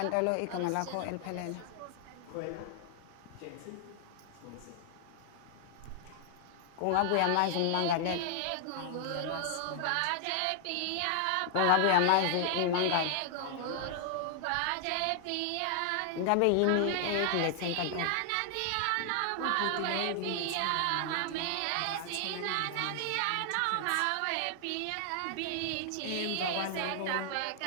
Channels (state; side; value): different; both; correlation 0.00